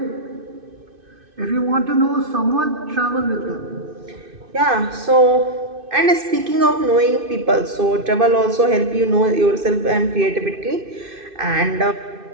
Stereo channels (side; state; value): left; late; 2.6 ms